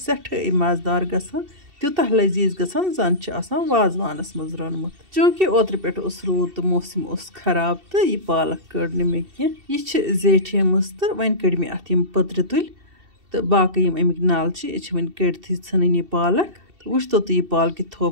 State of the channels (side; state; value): left; late; 2.7 ms